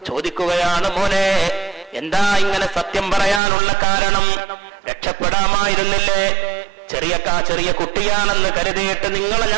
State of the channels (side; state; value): left; drops out; at 3.4 s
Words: ചോദിക്കുകയാണ്, മോനെ എന്താ ഇങ്ങനെ സത്യം പറയാനുള്ള കാരണം? രക്ഷപ്പെടാമായിരുന്നില്ലേ? ചെറിയ കുട്ടിയാണെന്ന് കരുതിയിട്ട് നിങ്ങളെ